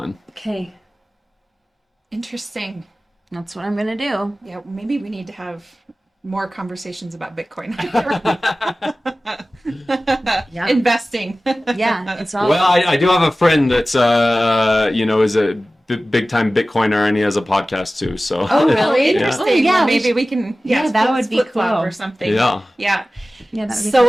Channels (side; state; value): both; normal; correlation 0.96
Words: Okay, Interesting. that's what I'm gonna do. Yeah, maybe we need to have more conversations about Bitcoin. Yeah. Investing. Yeah, it's all. Well, I do have a friend that's is a big time Bitcoiner, and he has a podcast too. So. Oh, really? Yeah. Interesting. Oh, yeah, Well, maybe we can. that would be flip-flop cool. or something. Yeah. Yeah. Yeah, that would be So